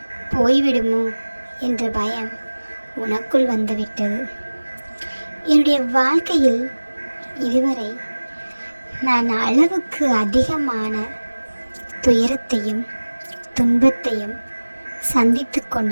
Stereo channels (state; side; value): inverted; both; correlation -1.00